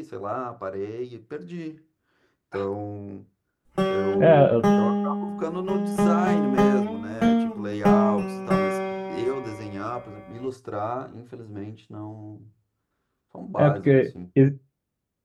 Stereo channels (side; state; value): both; identical; correlation 1.00